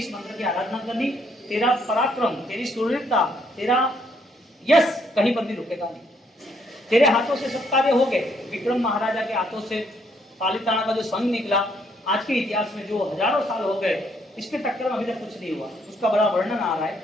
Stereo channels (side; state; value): both; normal; correlation 0.70